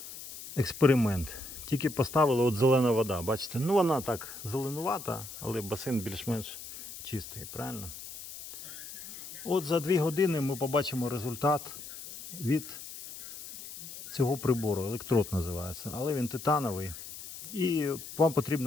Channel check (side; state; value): left; noise; hiss, 12 dB below the sound